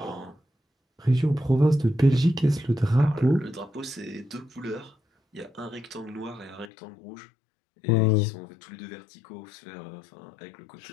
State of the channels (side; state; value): right; drops out; at 6.7 s